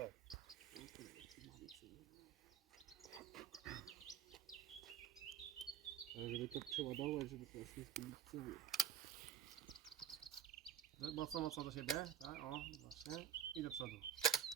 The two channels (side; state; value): left; quieter; 9.0 dB